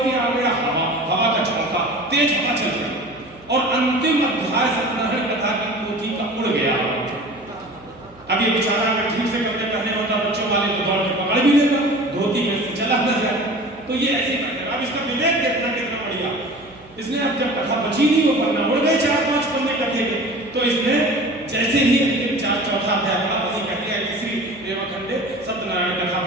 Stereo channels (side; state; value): right; noise; hum, 26 dB below the sound